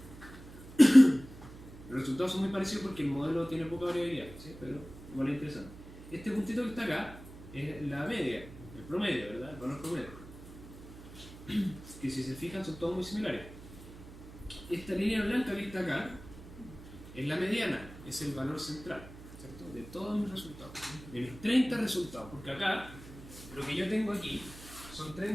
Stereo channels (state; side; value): noise; right; hum, 16 dB below the sound